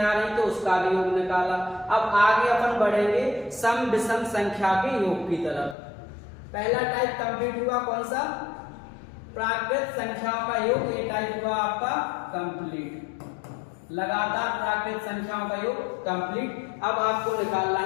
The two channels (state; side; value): drops out; right; at 5.8 s